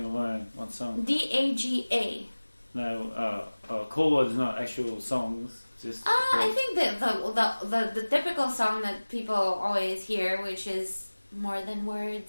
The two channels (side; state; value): both; inverted; correlation -1.00